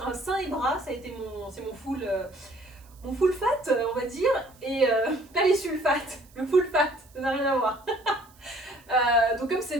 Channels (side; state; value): right; noise; hiss, 28 dB below the sound